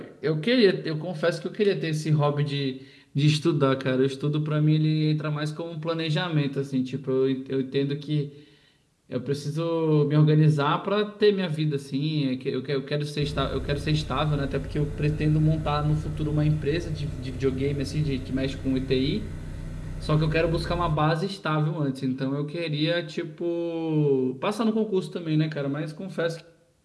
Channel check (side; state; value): both; identical; correlation 1.00